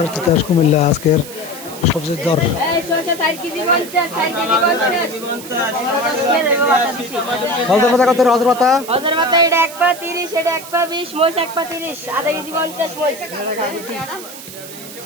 তিতাস কুমিল্লা আজকের সবজির দর এই শসা 60 কেজি 50 60 কেজি 50 হজর পাতা কত হজর পাতা এটা 1 পা 30 এটা 1 পা 20 মোষ 1 পা 30 আধা কেজি 50 মোষ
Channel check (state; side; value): noise; right; hiss, 14 dB below the sound